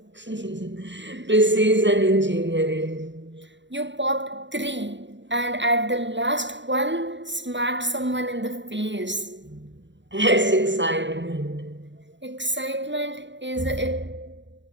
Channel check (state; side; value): late; left; 0.53 ms